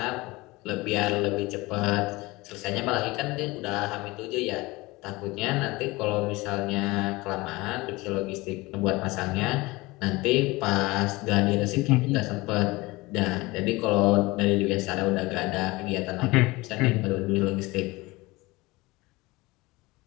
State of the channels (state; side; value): quieter; right; 22.0 dB